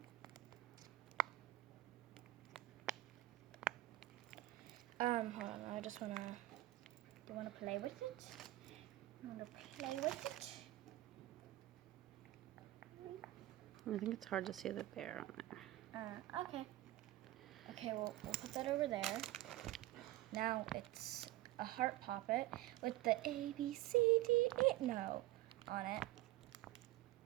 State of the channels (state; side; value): quieter; left; 16.6 dB